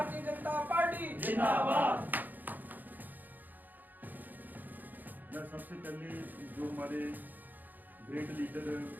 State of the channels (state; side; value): late; left; 0.085 ms